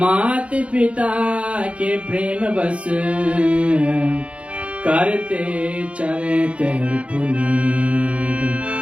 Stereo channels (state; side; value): late; left; 0.062 ms